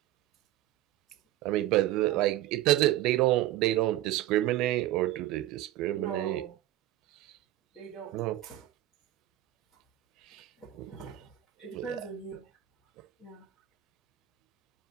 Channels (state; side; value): quieter; left; 14.6 dB